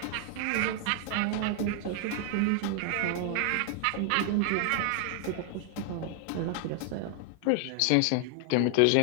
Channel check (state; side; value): different; both; correlation 0.00